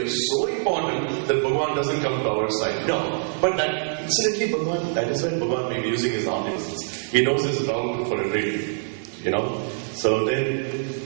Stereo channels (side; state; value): left; silent; 62 dB below the other